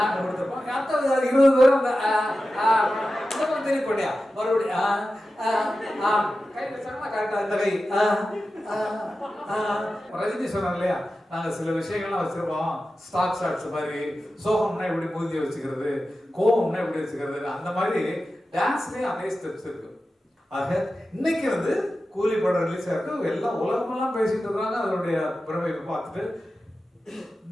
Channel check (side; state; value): both; normal; correlation 0.93